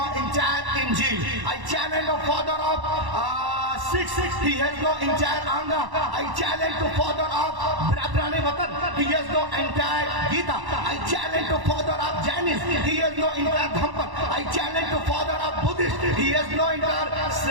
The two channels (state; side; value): late; left; 1.1 ms